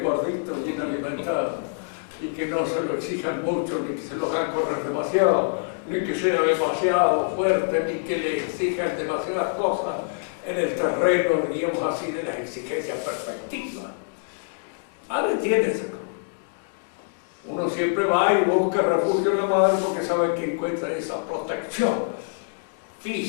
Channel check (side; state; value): right; silent; digital silence